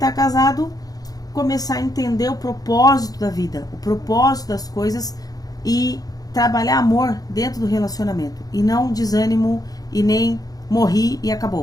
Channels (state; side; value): late; right; 0.18 ms